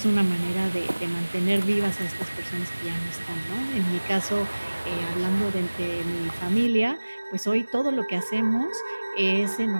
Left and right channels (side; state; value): both; inverted; correlation -1.00